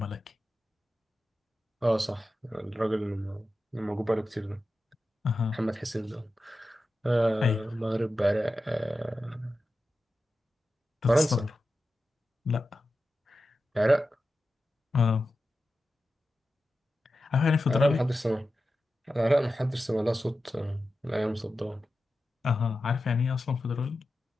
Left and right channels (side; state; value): both; normal; correlation 0.92